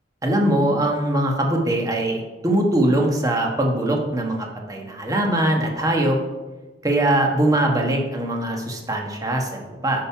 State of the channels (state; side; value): normal; both; correlation 0.59